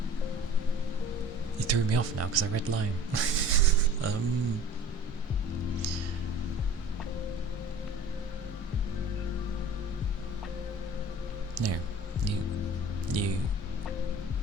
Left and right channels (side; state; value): both; normal; correlation 0.43